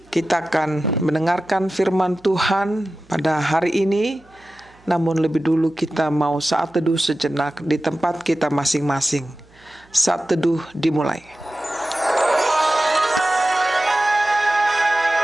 kita akan mendengarkan firman Tuhan pada hari ini. Namun lebih dulu kita mau saat teduh sejenak di tempat kita masing-masing. Saat teduh dimulai.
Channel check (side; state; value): right; noise; hum, 29 dB below the sound